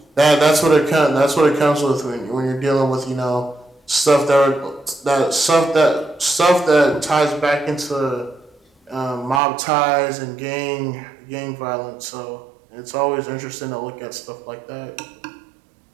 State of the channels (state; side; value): drops out; left; at 9.4 s